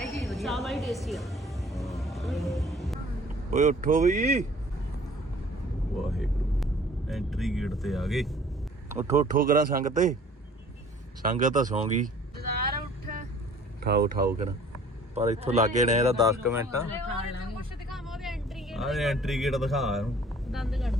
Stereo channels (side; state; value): both; normal; correlation 0.52